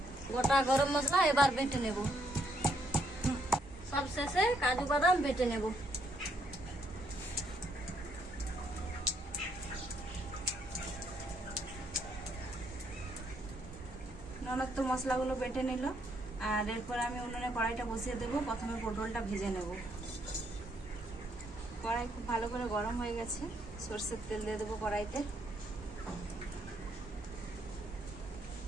গোটা গরম মশলা এবার বেটে নেব। সব শেষে কাজু বাদাম বেটে নেব। ননদ তো মশলাগুলো বেটে নিল। আর এরপর আমি উনুনে কড়াইটা বসিয়ে দেবো। প্রথমে পটলটা ভেজে নেব। কড়াই খুব ভালো করে গরম হয়ে গেছে। সরষের তেল দিয়ে দেবো কড়াইতে।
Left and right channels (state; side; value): normal; both; correlation 0.72